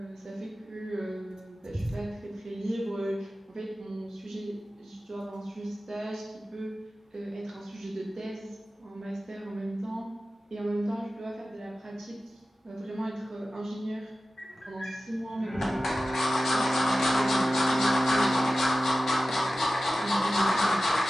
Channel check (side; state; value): both; normal; correlation 0.95